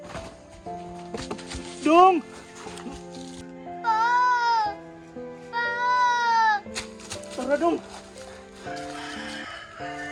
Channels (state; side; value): identical; both; correlation 1.00